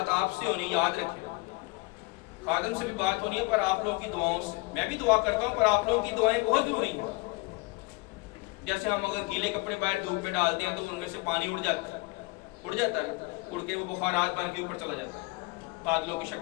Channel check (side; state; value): right; quieter; 25.4 dB